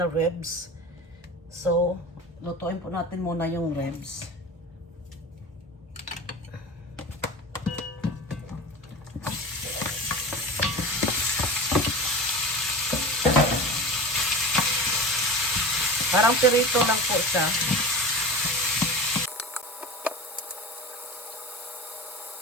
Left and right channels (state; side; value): normal; both; correlation 0.32